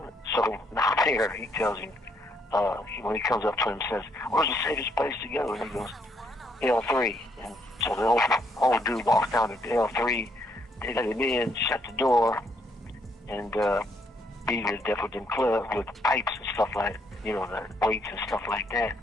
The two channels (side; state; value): both; normal; correlation 0.72